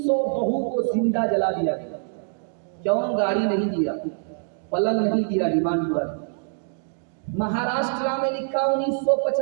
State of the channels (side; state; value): left; silent; digital silence